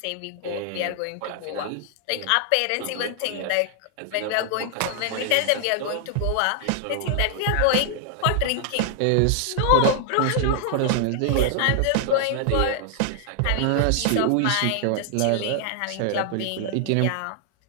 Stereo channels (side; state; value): both; different; correlation 0.00